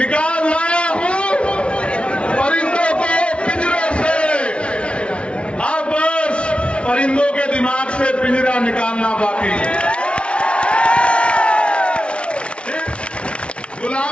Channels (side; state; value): right; late; 0.059 ms